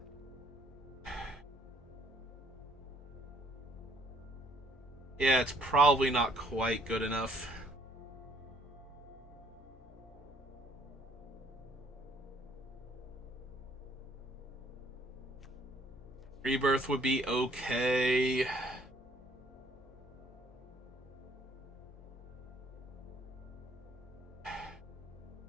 Yeah, it's probably not quite good enough. Rebirth would be okay.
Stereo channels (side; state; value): both; normal; correlation 0.62